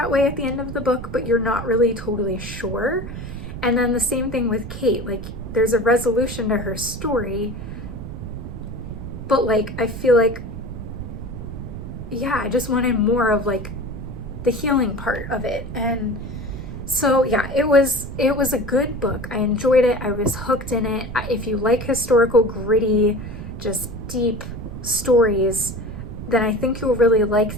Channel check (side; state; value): right; noise; rumble, 9 dB below the sound